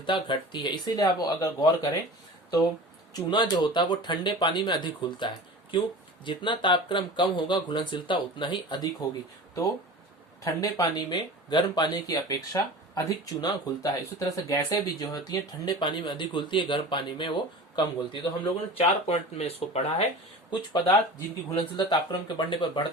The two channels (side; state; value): both; normal; correlation 0.36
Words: घटती है। इसीलिए आप अगर गौर करें तो चूना जो होता है वो ठंडे पानी में अधिक घुलता है। क्यों, जितना तापक्रम कम होगा घुलनशीलता उतना ही अधिक होगी। तो ठंडे पानी में गर्म पानी की अपेक्षा अधिक चूना घुलता है। इसी तरह से गैसें भी जो होती हैं ठंडे पानी में अधिक घुलती है, गर्म पानी में वो कम घुलती है। तो हम लोगों ने 4 पॉइंट में इसको पढ़ा है। कुछ पदार्थ जिनकी घुलनशीलता तापक्रम के बढ़ने पर